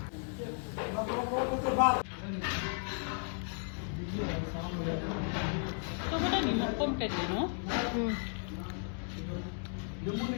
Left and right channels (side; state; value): right; silent; 55 dB below the other